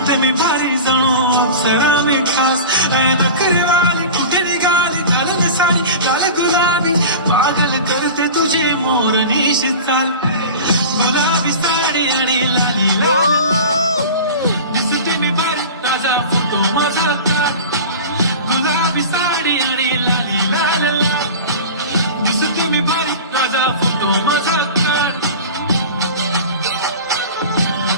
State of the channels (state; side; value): inverted; both; correlation -0.33